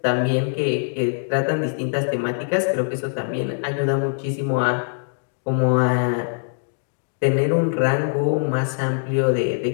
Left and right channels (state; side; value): silent; right; digital silence